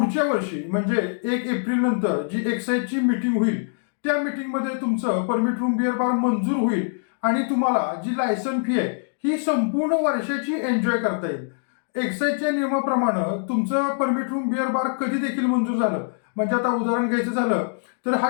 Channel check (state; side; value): silent; right; 63 dB below the other